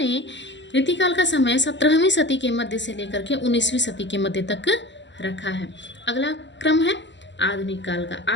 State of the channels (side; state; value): right; late; 0.53 ms